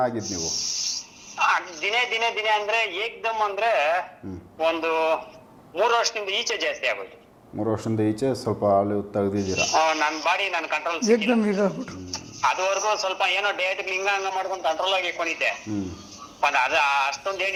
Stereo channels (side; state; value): both; identical; correlation 1.00